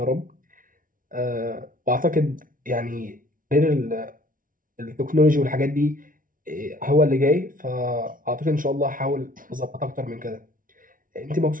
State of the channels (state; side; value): late; left; 0.39 ms